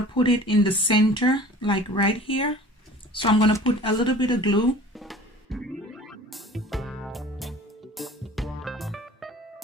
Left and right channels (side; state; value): both; normal; correlation 0.44